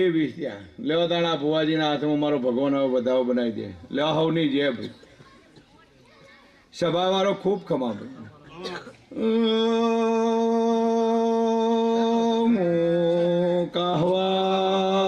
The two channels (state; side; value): identical; both; correlation 1.00